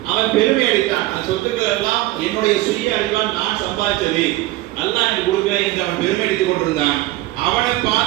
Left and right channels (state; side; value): quieter; left; 17.5 dB